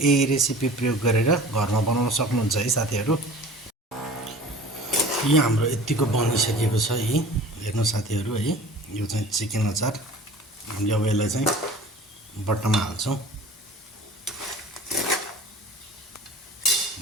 रेसिपी प्रयोग गरेर घरमा बनाउन सक्नुहुन्छ है साथीहरू। यो हाम्रो यतिको बनिसकेको छ है। हेर्नु साथीहरू है, यो चाहिँ चिकन अचार। हामीले अब यसलाई चाहिँ बट्टामा हाल्छौँ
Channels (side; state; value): both; normal; correlation 0.43